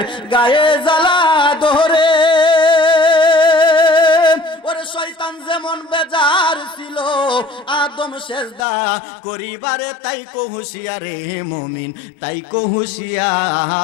গায়ে জ্বালা ধরে, ওরে শয়তান যেমন বেজার ছিল আদম সেজদা করিবারে, তাই কো হুঁশিয়ারে মুমিন, তাই কো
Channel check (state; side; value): drops out; right; at 8.6 s